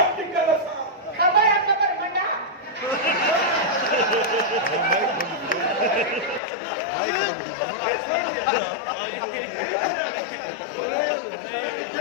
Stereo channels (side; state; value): right; drops out; at 6.4 s